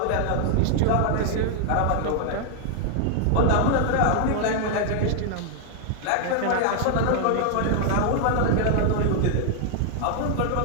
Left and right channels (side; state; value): both; different; correlation 0.00